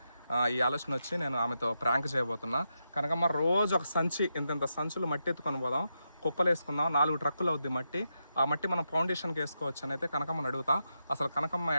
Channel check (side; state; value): both; inverted; correlation -0.86